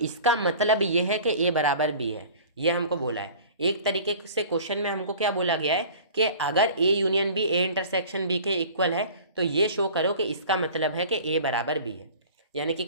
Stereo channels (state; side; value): inverted; both; correlation -0.43